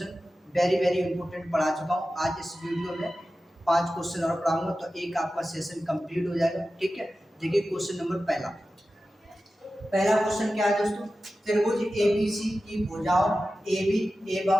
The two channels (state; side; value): normal; both; correlation 0.94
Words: वेरी इंपॉर्टेंट पढ़ा चुका हूँ। आज इस वीडियो में 5 क्वेश्चन और पढ़ाऊंगा तो एक आपका सेशन कंप्लीट हो जाएगा। ठीक है, देखिए क्वेश्चन नंबर पहला क्वेश्चन क्या है दोस्तों। त्रिभुज एबीसी की भुजाओं AB